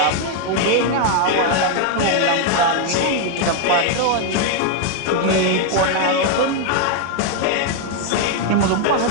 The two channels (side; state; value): both; different; correlation 0.00